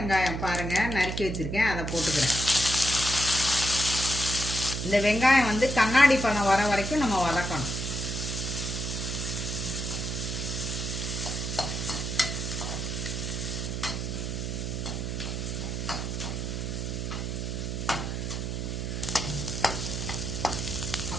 பாருங்கள் நறுக்கி வச்சுருக்கேன், அதை போட்டுக்கிறேன். இந்த வெங்காயம் கண்ணாடி பழம் வர வரைக்கும் நம்ம வதக்கணும்.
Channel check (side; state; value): right; noise; hum, 3 dB below the sound